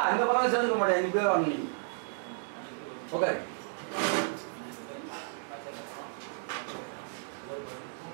இந்த பக்கம் சேர்ந்துக்க மாட்டேன், நீ பேர் வாங்க. ஓகே,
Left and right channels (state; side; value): silent; left; digital silence